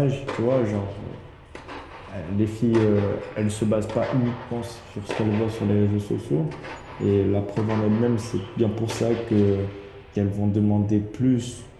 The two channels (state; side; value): identical; both; correlation 1.00